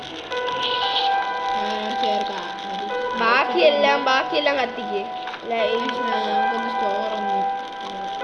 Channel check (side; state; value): both; identical; correlation 1.00